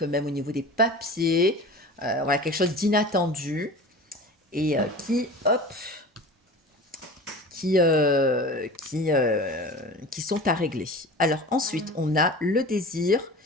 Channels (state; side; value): normal; both; correlation 0.36